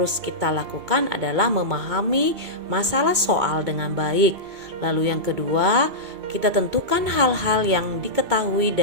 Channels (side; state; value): left; late; 2.2 ms